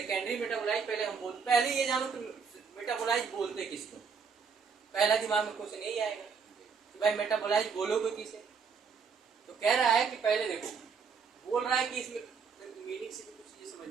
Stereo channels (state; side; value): quieter; left; 5.8 dB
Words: मेटाबोलाइज पहले ये जानो कि मेटाबोलाइज बोलते किसको, पहला दिमाग में क्वेश्चन यही आएगा कि भाई मेटाबोलाइज बोलोगे किसे। तो कह रहा है कि पहले देखो, बोल रहा है कि इसमें मीनिंग से भी कुछ चीजें